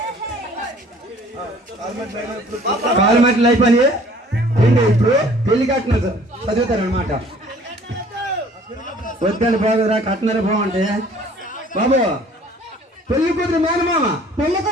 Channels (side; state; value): both; normal; correlation 0.53